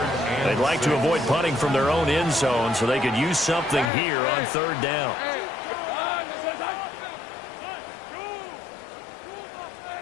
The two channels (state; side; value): drops out; right; at 3.9 s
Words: They'd like to avoid punting from their own end zone so they could use something here on 3rd down.